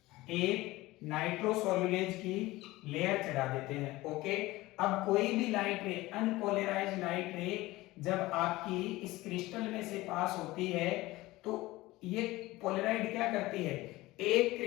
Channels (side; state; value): right; quieter; 19.0 dB